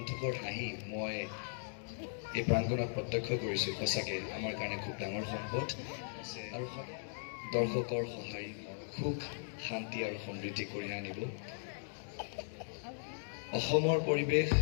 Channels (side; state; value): right; silent; digital silence